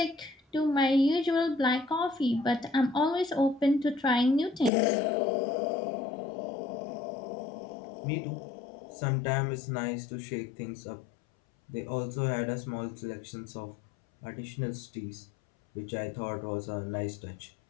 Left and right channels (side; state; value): right; drops out; at 4.7 s